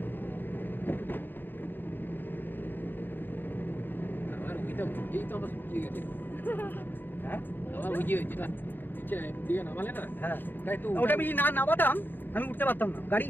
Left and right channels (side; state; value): right; late; 0.093 ms